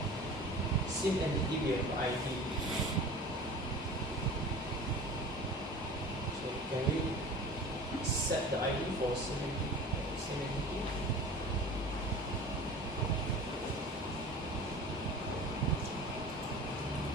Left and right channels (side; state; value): both; normal; correlation 0.39